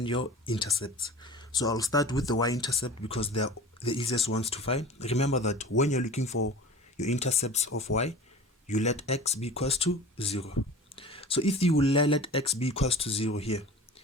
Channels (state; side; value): normal; both; correlation 0.38